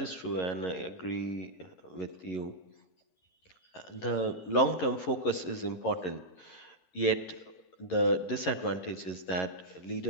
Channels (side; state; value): right; late; 11 ms